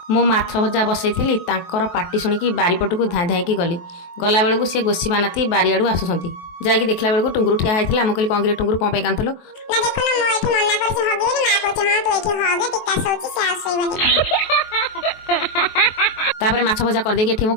मु माछ भजा बसई पार्टी शुणिकी बारीपटू धाई धाई गली गला बेलू सी गोसी बानाती बारियाड़ू आसुँच जाकि देखला बेलू टुंगुरु ठिया होता मुझे कहली कौन टुंगुरु कौन कांदलु तापर माछ भजा करदेकी एठी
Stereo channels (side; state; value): right; late; 23 ms